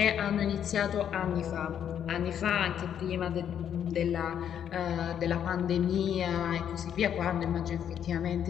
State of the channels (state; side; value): quieter; right; 9.2 dB